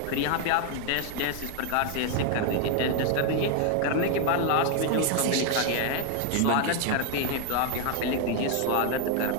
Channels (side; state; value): both; different; correlation 0.00